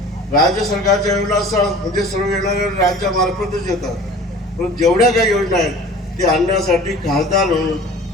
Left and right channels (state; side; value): normal; both; correlation 0.43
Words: राज्य सरकारच्या योजना म्हणजे सर्व येणाऱ्या राज्यामार्फतच येतात, पण जेवढ्या काही योजना आहेत ते आणण्यासाठी खासदार